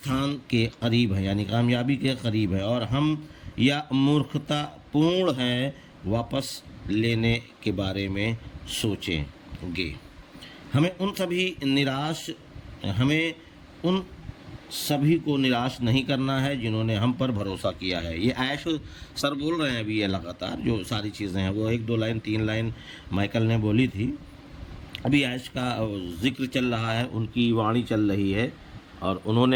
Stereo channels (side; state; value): both; identical; correlation 1.00